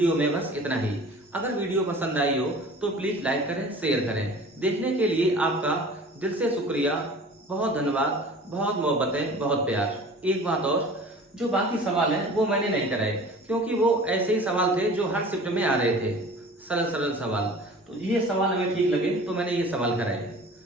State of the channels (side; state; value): both; normal; correlation 0.43